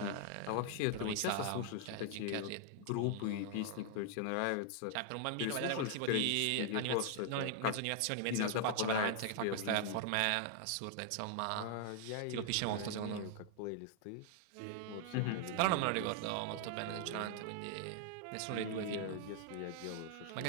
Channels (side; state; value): both; different; correlation 0.00